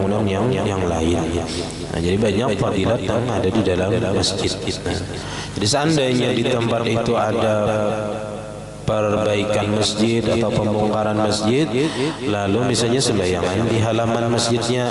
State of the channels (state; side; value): identical; both; correlation 1.00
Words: yang lain. Nah, jadi banyak fadilat yang ada di dalam masjid. Nah, jadi seandainya di tempat itu ada perbaikan masjid atau pembongkaran masjid, lalu misalnya sembayangan di halaman